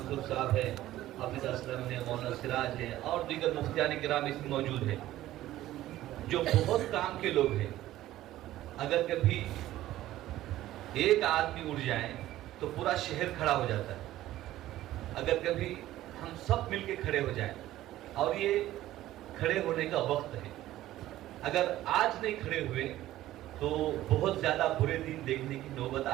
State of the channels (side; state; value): left; quieter; 14.6 dB